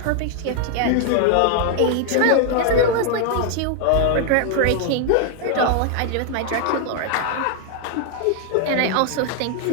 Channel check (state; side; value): different; both; correlation 0.00